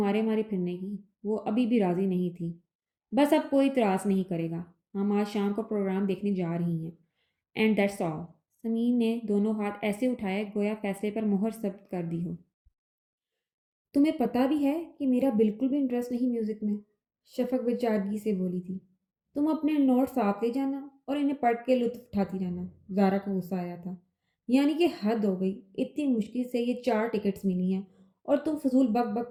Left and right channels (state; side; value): identical; both; correlation 1.00